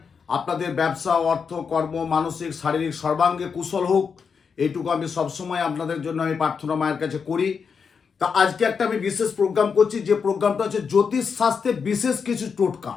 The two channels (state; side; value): quieter; right; 6.0 dB